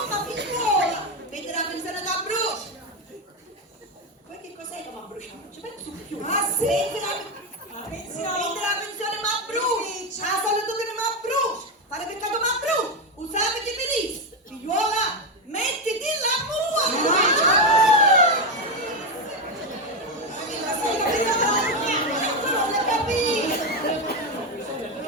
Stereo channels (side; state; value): both; normal; correlation 0.09